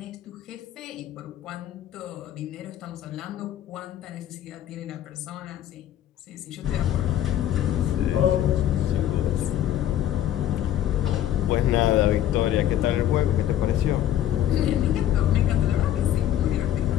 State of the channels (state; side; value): quieter; right; 11.6 dB